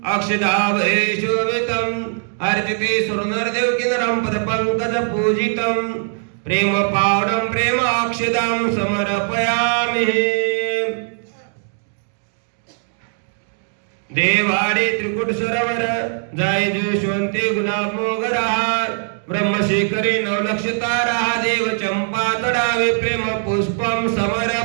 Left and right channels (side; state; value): left; silent; 66 dB below the other